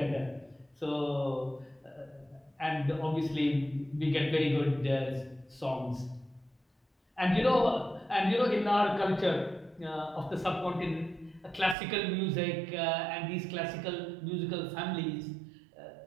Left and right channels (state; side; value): drops out; left; at 11.8 s